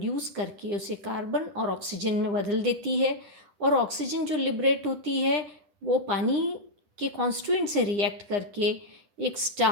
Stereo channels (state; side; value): late; left; 9.8 ms